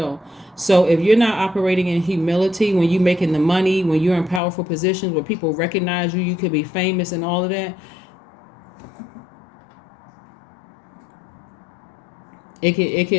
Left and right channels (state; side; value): drops out; right; at 4.4 s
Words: So if you're not operating in humility, when you're making the money, when you're in powerful positions where people recognize you, you could be famous and all of that, you